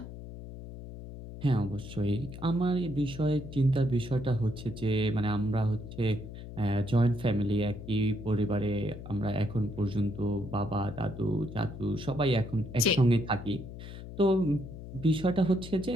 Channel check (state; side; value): noise; left; hum, 12 dB below the sound